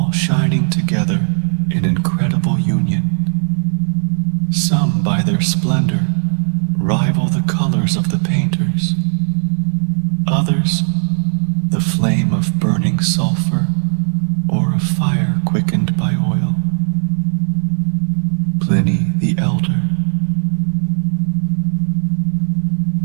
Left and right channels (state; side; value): silent; left; 57 dB below the other